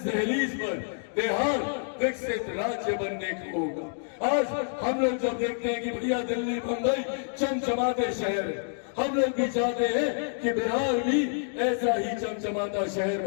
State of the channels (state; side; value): silent; right; digital silence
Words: दहलीज पर बिहार विकसित राज्य बनने को होगा। आज हम लोग जब देखते हैं कि भैया दिल्ली मुंबई चमचमाते शहर है, हम लोग भी चाहते हैं कि बिहार भी ऐसा ही चमचमाता शहर